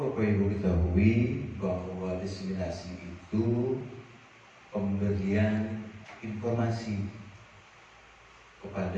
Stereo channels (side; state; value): both; identical; correlation 1.00